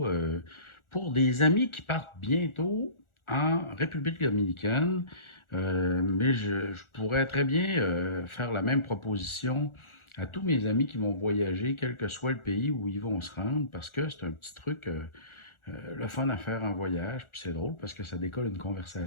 pour des amis qui partent bientôt en République dominicaine. Mais je pourrais très bien faire la même proposition à tous mes amis qui vont voyager, quel que soit le pays où ils vont se rendre, parce que c'est un petit truc, le fun à faire en voyage. Puis c'est drôle parce que ça décolle une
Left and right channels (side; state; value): right; late; 1.4 ms